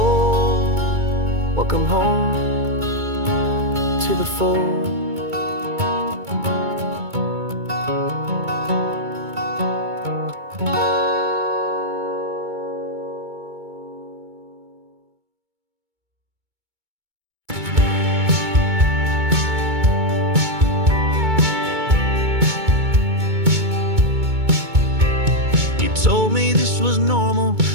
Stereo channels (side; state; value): left; late; 2.2 ms